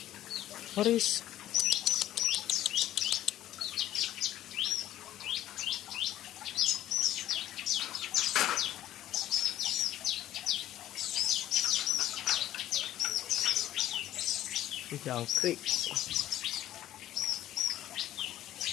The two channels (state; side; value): quieter; right; 13.2 dB